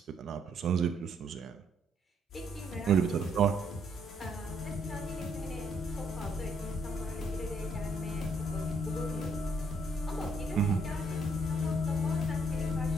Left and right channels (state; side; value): normal; both; correlation 0.69